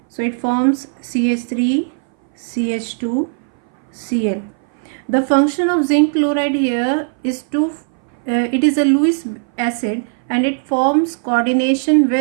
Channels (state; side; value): silent; left; 60 dB below the other